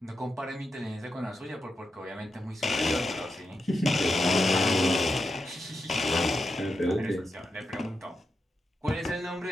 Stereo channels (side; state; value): both; normal; correlation 0.87